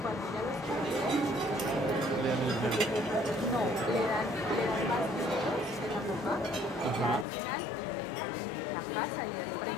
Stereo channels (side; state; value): right; drops out; at 7.2 s